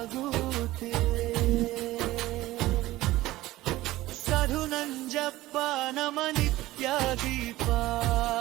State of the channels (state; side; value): quieter; left; 17.1 dB